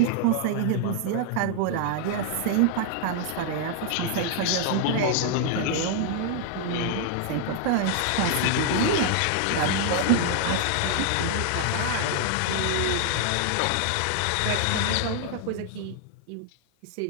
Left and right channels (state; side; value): different; both; correlation 0.00